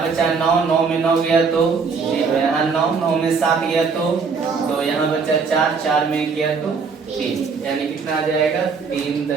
बचा 9, 9 में 9 गया तो 0, यहाँ 9, 9 में 7 गया तो यहाँ बचा 4, 4 में गया तो 3, यानी कितना आ जाएगा?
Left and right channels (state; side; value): quieter; left; 5.2 dB